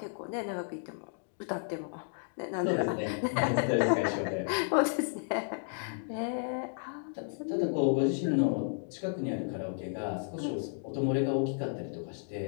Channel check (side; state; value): right; silent; digital silence